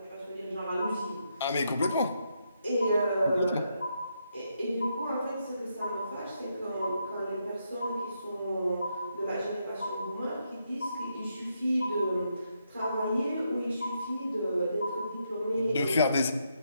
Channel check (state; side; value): inverted; both; correlation -0.80